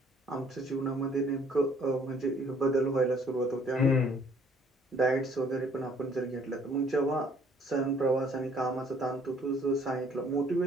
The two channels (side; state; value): both; normal; correlation 0.60